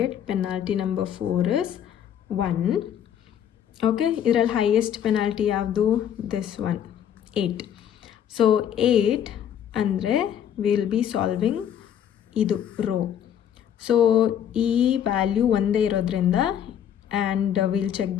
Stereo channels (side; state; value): right; quieter; 9.5 dB